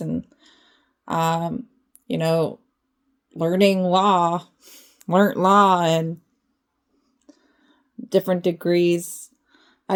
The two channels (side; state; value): both; identical; correlation 1.00